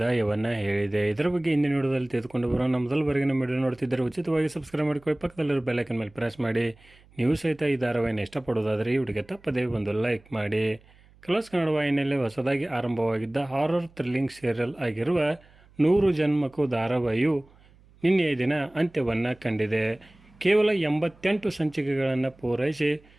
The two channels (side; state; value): right; noise; hum, 28 dB below the sound